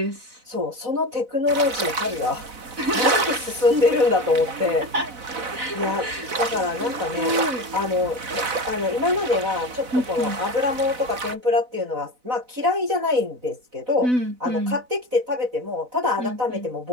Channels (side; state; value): left; late; 4.0 ms